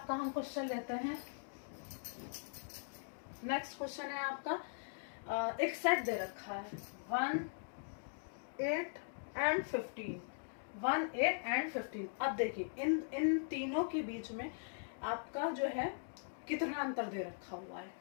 हम क्वेश्चन लेते हैं। नेक्स्ट क्वेश्चन है आपका एक सेट दे रखा है 1 8 एंड 15, 1 8 एंड 15। अब देखिए इन तीनों के बीच में आपका जो है कितना अंतर दे रखा हुआ है,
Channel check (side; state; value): right; silent; digital silence